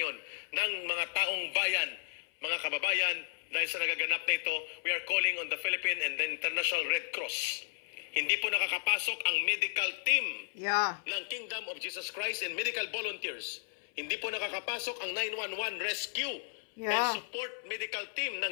ng mga taong bayan, mga kababayan, dahil sa nagaganap na ito, we are calling on the Philippine and the International Red Cross. Hindi po nakakapasok ang medical team ng Kingdom of Jesus Christ and medical volunteers. Hindi po nakakapasok ang 911 rescue and support medical team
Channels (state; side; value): silent; right; 55 dB below the other